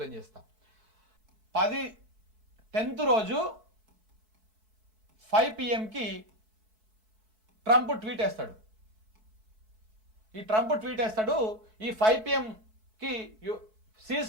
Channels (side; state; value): left; late; 4.6 ms